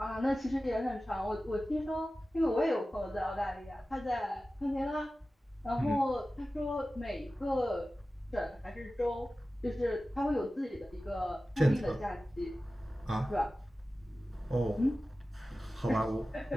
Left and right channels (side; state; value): both; normal; correlation 0.95